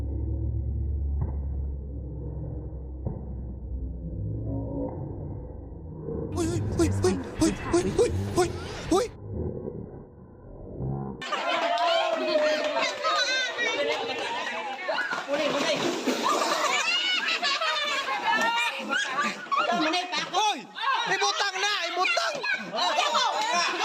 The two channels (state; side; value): identical; both; correlation 1.00